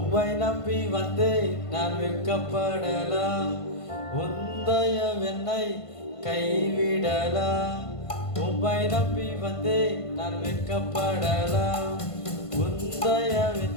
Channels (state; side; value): late; right; 1.5 ms